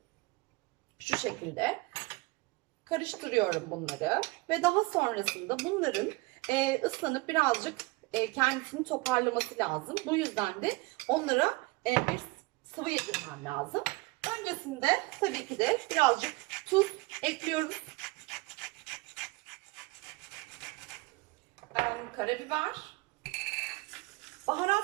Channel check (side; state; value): left; quieter; 23.9 dB